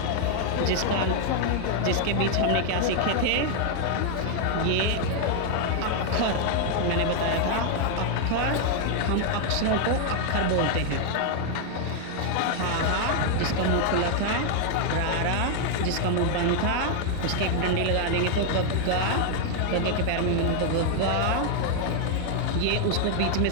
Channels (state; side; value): different; both; correlation 0.00